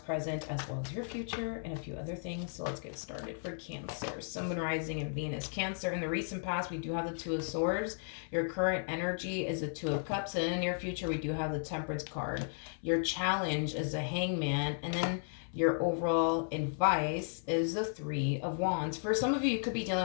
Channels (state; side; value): silent; right; 55 dB below the other